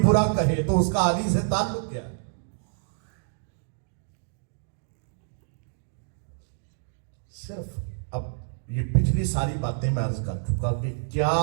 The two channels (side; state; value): left; silent; digital silence